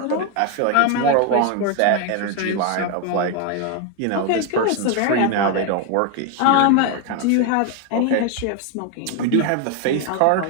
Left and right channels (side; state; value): both; different; correlation 0.01